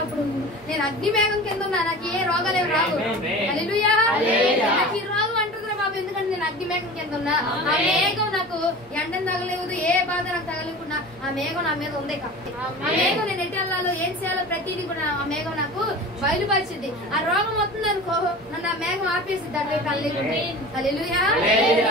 అప్పుడు నేను అగ్ని మేఘం కింద ఉన్నా, నాకు ఏ రోగాలు ఏమి రావు. హల్లెలూయా. నాకు ఈ రోగం అంటుందిరా బాబు, ఎందుకంటే నేను అగ్ని మేఘం కింద ఉన్నా. ఆ మేఘం నాకు ఎండను తగలేదు, ఏ బాధ నాకు తగలేకుండా ఆ మేఘం నా మీద ఉంది కాబట్టి ఆ మేఘం నేను ఎటు వెళ్ళాలో ఏం చేయాలో ప్రతిదీ కూడా ఆ మేఘం నాకు బయలుపరిచింది. ఆ రోగం వస్తుంది అనుకో, నన్ను ఆ మేఘం ఆపేసింది. అటువైపు హల్లెలూయా.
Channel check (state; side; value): normal; both; correlation 0.36